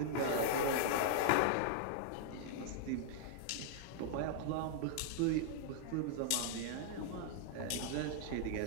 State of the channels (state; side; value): different; both; correlation -0.01